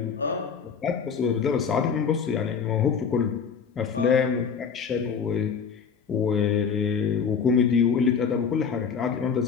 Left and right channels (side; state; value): right; quieter; 6.4 dB